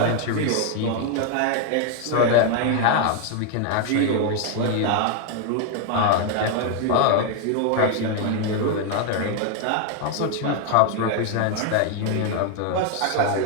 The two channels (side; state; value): both; different; correlation 0.01